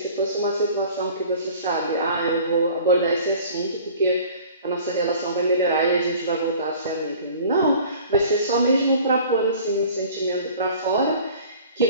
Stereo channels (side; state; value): both; inverted; correlation -0.47